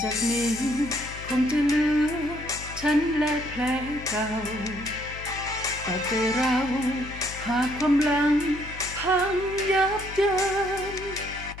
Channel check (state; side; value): noise; left; hum, 13 dB below the sound